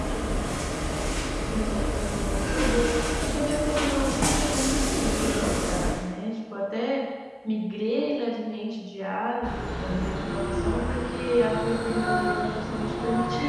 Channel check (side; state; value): both; identical; correlation 1.00